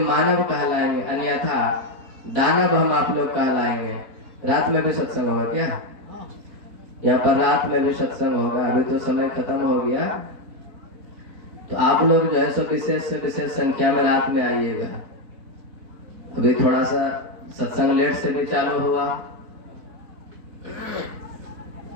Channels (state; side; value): late; left; 4.2 ms